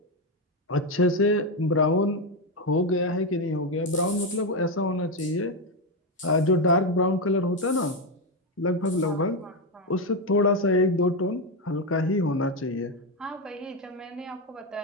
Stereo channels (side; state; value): both; normal; correlation 0.08